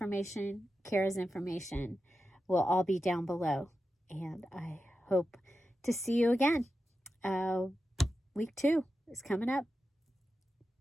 Cara's information will all be down below. And I hope to see you again. Week 2 is coming up.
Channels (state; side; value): normal; both; correlation 0.91